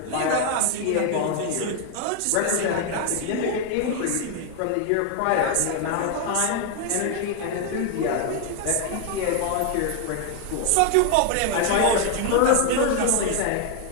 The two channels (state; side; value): different; both; correlation 0.00